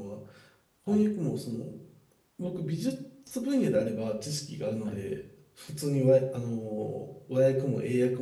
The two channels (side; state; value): both; identical; correlation 1.00